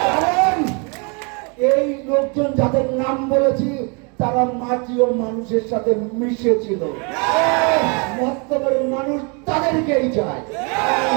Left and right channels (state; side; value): quieter; left; 33.4 dB